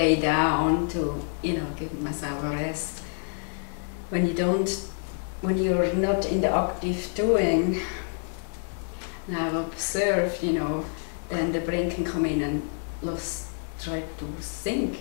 down to, you know, give myself a rest. When you're not in the active doing, and I've observed, you know, then the brain can come in and try to think,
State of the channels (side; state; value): right; silent; 60 dB below the other